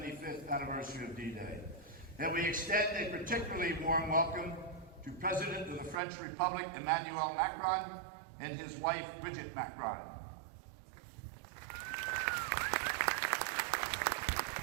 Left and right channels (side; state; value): left; drops out; at 6.0 s